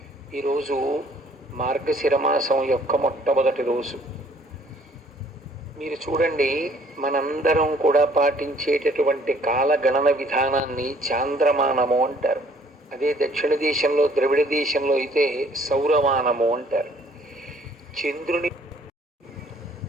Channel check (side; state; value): both; normal; correlation 0.60